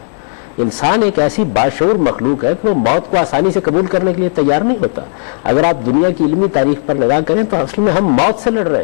انسان ایک ایسی باشعور مخلوق ہے کہ وہ موت کو آسانی سے قبول کرنے کے لیے تیار نہیں ہوتا۔ اگر آپ دنیا کی علمی تاریخ پر نگاہ کریں تو اصل میں ہم موت سے لڑ رہے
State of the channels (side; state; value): right; silent; 61 dB below the other